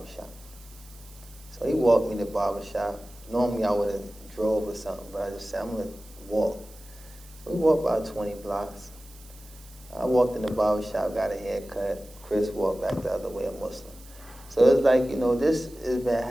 So he walked me to the barbershop. Normally I would have drove or something, but I just said, I'm going to walk. So we walked about 20 blocks. I walked in the barbershop, got a haircut. Chris walked back the other way, a Muslim. So it's like, you know, this has been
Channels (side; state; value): right; noise; hiss, 23 dB below the sound